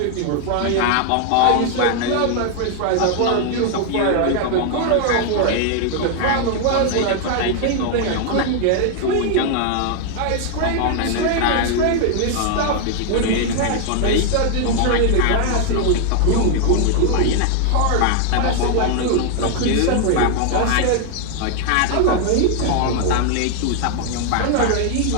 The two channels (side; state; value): both; different; correlation 0.00